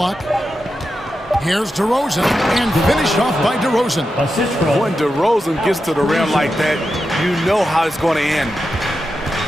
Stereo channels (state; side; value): normal; both; correlation 0.89